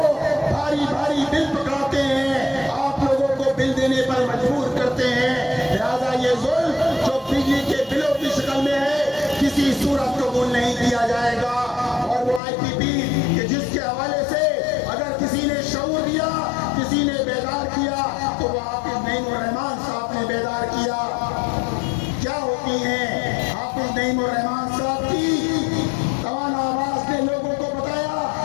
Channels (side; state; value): right; drops out; at 12.4 s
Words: بھاری بھاری بل پکڑاتے ہیں، آپ لوگوں کو بل دینے پر مجبور کرتے ہیں. لہذا یہ ظلم جو بجلی کے بلوں کی شکل میں ہے کسی صورت قبول نہیں کیا جائے گا. اور وہ آئی پی پی کہ جس کے حوالے سے اگر کسی نے شعور دیا، کسی نے بیدار کیا، تو وہ حافظ نعیم الرحمان صاحب نے بیدار کیا. کیا ہوتی ہیں حافظ نعیم الرحمان صاحب کی توانا آواز نے لوگوں کو بتایا